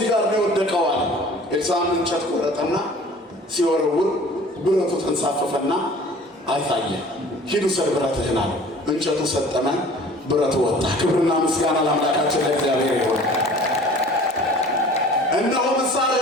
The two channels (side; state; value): both; normal; correlation 0.47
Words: ጋር ነው የወደቀው አለ። ኤልሳዕም እንጨት ቆረጠና ሲወረውር ብረቱ ተንሳፈፈና አይታየ። ሂዱ ሰድ ብረትህን አለ። እንጨቱ ሰጠመ፣ ብረቱ ወጣ። ክብርና ምስጋና ለአምላካችን ለእግዚአብሔር ይሁን። እነሆ